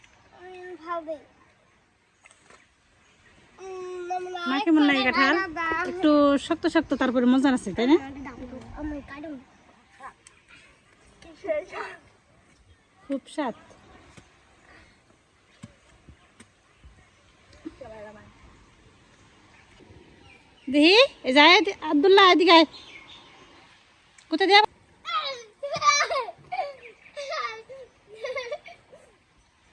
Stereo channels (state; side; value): identical; both; correlation 1.00